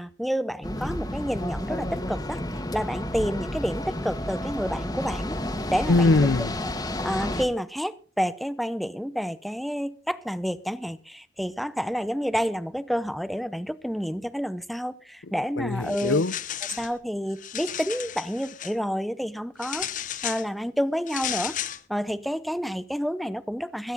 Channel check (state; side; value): normal; both; correlation 0.81